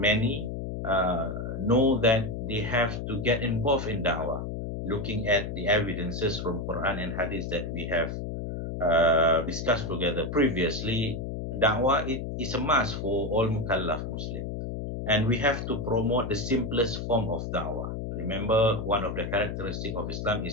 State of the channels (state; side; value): noise; left; hum, 5 dB below the sound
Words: know that they have to get involved in da'wah. Looking at the evidences from Quran and Hadith that we have discussed together previously, da'wah is a must for all mukallaf Muslims. And we have to promote the simplest form of da'wah. Remember, one of the characteristics of Islam